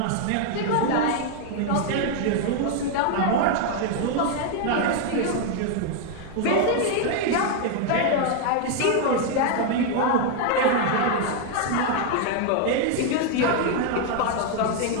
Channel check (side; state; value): both; different; correlation 0.00